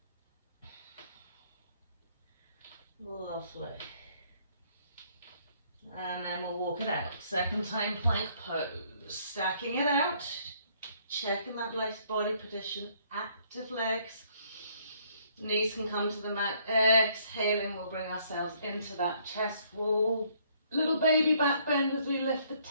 Lovely. And then we'll walk it out. Second time plank pose. Stacking it out. Checking that nice body position. Active legs. Knees can come to the mat. Exhaling, we'll bring ourselves into that chest wall. Little baby back bend as we lift the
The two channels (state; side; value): inverted; both; correlation -0.65